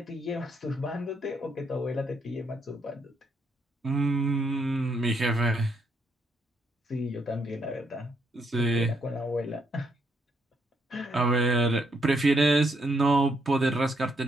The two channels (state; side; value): normal; both; correlation 0.75